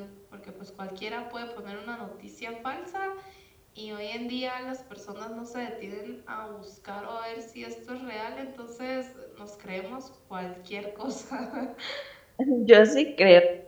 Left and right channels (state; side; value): identical; both; correlation 1.00